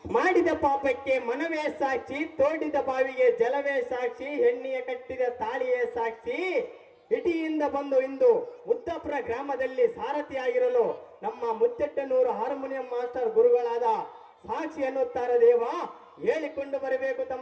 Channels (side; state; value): both; identical; correlation 1.00